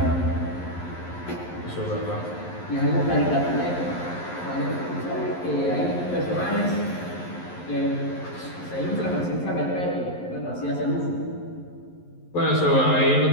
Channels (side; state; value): right; late; 11 ms